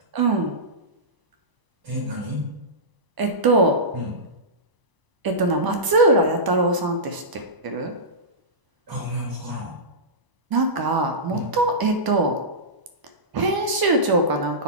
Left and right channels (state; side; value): late; left; 1.0 ms